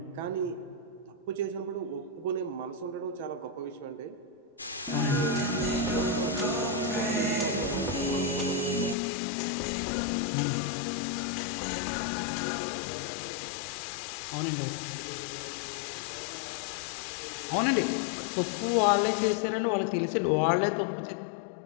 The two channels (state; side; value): drops out; right; at 9.0 s